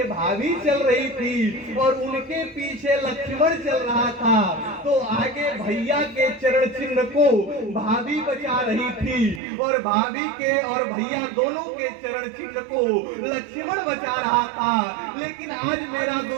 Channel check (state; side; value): drops out; left; at 9.4 s